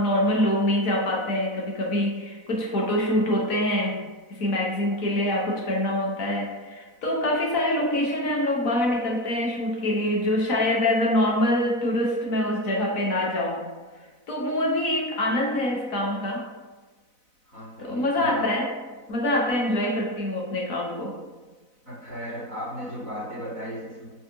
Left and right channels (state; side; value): late; right; 4.0 ms